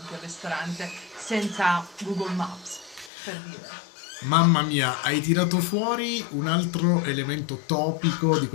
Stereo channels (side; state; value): right; drops out; at 3.1 s